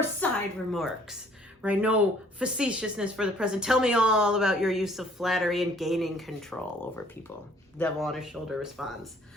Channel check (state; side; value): normal; both; correlation 0.59